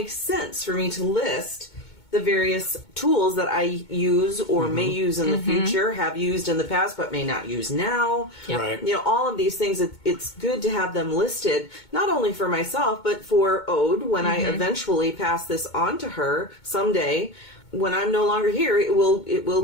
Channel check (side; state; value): right; late; 2.2 ms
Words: sense for me to list the various tools that I use or may use in the future, have used in the past, but may not use now. Yep. Right. You know, all of these things, it's good to have them listed, not only for myself, but for Ode, when I eventually pass this on to her someday. When I'm no longer here, it will go